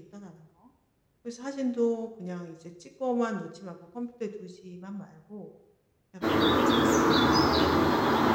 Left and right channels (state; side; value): identical; both; correlation 1.00